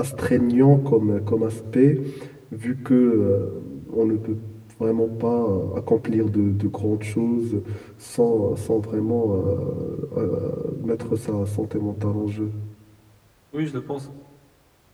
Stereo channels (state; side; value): identical; both; correlation 1.00